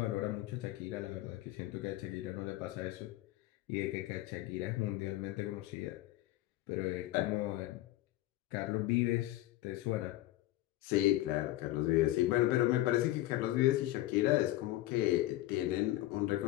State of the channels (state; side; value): quieter; right; 16.3 dB